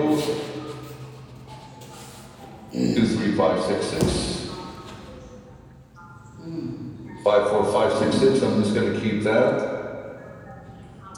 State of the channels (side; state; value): both; identical; correlation 1.00